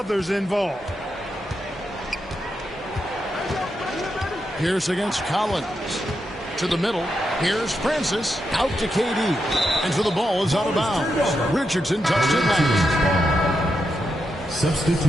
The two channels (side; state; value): both; normal; correlation 0.85